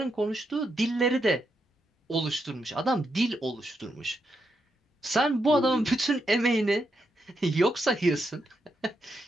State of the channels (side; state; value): both; normal; correlation 0.82